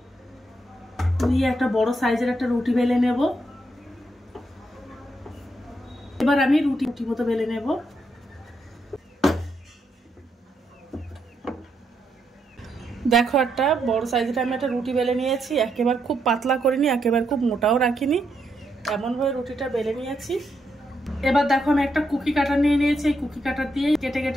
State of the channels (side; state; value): both; normal; correlation 0.79